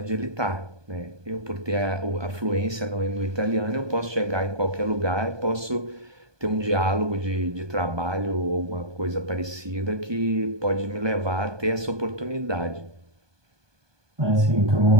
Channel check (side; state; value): left; late; 1.2 ms